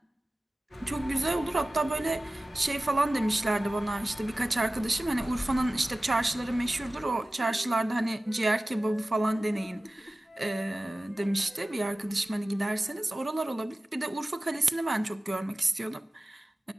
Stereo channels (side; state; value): both; normal; correlation 0.96